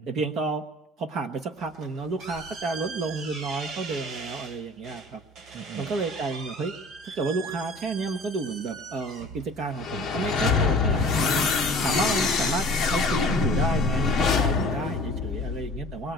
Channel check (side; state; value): both; normal; correlation 0.46